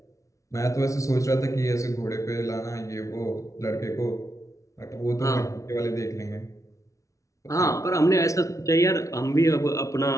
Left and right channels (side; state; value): right; late; 0.15 ms